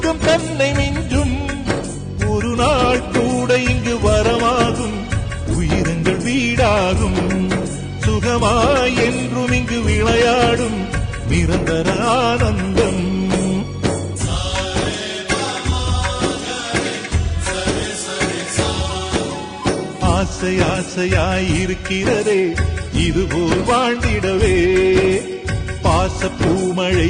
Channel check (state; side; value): identical; both; correlation 1.00